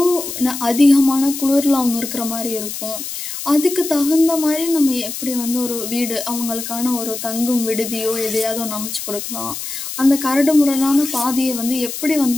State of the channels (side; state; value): left; noise; hiss, 7 dB below the sound